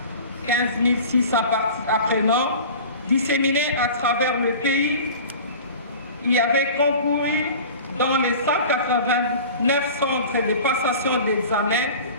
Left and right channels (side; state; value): both; inverted; correlation -0.39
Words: 15 600 apprenants disséminés à travers le pays y avaient concouru dans les 189 centres de passation d'examen